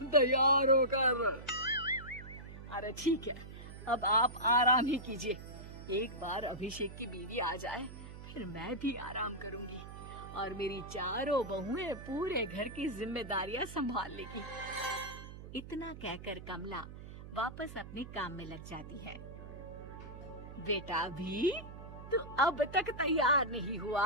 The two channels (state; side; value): noise; right; hum, 13 dB below the sound